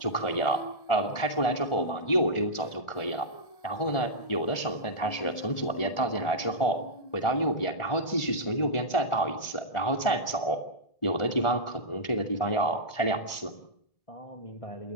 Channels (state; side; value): late; right; 1.4 ms